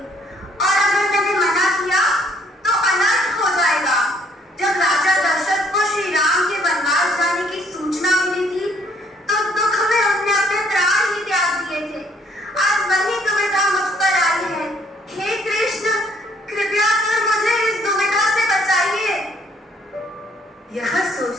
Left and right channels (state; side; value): normal; both; correlation 0.65